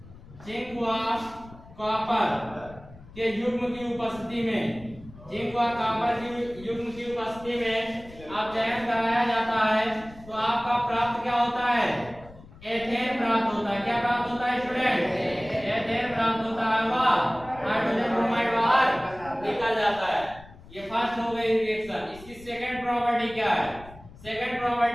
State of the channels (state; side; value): noise; left; rumble, 20 dB below the sound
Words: जिंक व कॉपर के युग्म की उपस्थिति में अपचयन कराया जाता है तो आपका प्राप्त क्या होता है? एथेन प्राप्त होता है। क्या प्राप्त होता है स्टूडेंट? एथेन प्राप्त होता है, वह हाइड्रोजन ब्रोमाइड बाहर निकल जाता है। ये फर्स्ट हो गई रिएक्शन। इसकी सेकंड प्रॉपर्टी क्या है? सेकंड